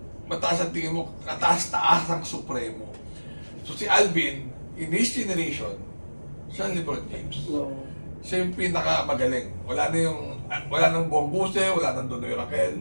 mataas ang tingin mo, kataas-taas ang supremo. So, si Alvin, in his generation, siya ang LeBron James. No. Siya yung pinakamagaling. Wala nang Bong Guse, wala nang Donoy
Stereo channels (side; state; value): both; inverted; correlation -1.00